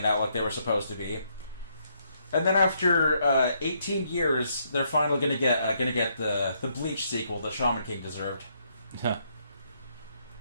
out like they were supposed to be. And then after 18 years, they're finally gonna get the Bleach sequel that Shaman King deserved. Huh.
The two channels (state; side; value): inverted; both; correlation -0.74